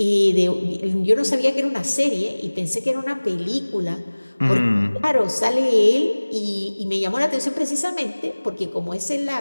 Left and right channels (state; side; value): inverted; both; correlation -1.00